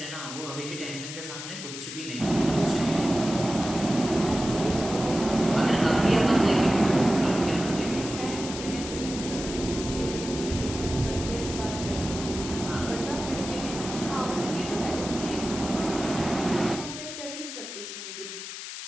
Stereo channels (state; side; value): noise; left; hiss, 9 dB below the sound